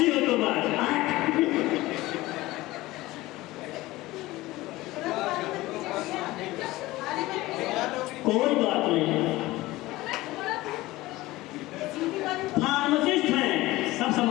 हो तो बात। कोई बात नहीं, फार्मासिस्ट हैं, सब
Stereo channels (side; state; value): right; quieter; 18.6 dB